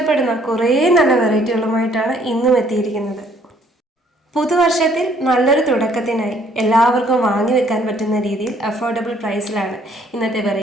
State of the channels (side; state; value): both; normal; correlation 0.63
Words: കുറേ നല്ല വെറൈറ്റികളുമായിട്ടാണ് ഇന്നും എത്തിയിരിക്കുന്നത്. പുതുവർഷത്തിൽ നല്ലൊരു തുടക്കത്തിനായി എല്ലാവർക്കും വാങ്ങി വെക്കാൻ പറ്റുന്ന രീതിയിൽ അഫോർഡബിൾ പ്രൈസിലാണ് ഇന്നത്തെ